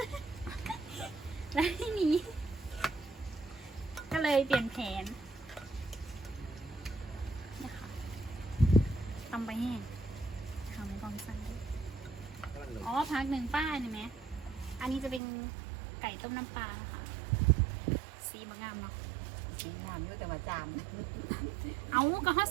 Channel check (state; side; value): drops out; left; at 15.2 s